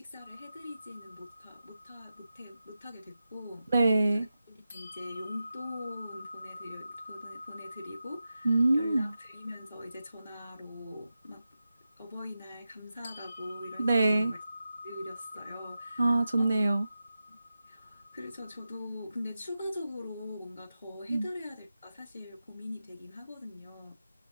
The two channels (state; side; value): inverted; both; correlation -0.92